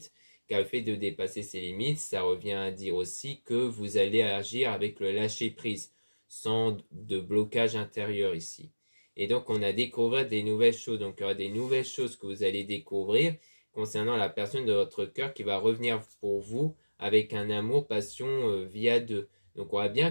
car le fait de dépasser ses limites, ça revient à dire aussi que vous allez agir avec le lâcher prise, sans de blocage intérieur ici. Et donc on a découvert des nouvelles choses, donc il y aura des nouvelles choses que vous allez découvrir concernant la personne de votre cœur qui va revenir pour vous avec un amour, passion via deux. Donc on voit bien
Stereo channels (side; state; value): both; inverted; correlation -1.00